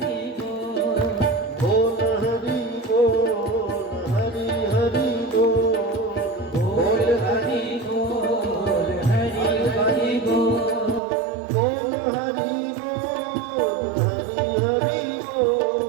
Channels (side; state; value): left; drops out; at 11.0 s